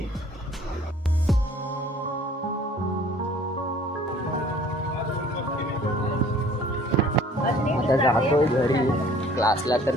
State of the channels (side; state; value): both; normal; correlation 0.53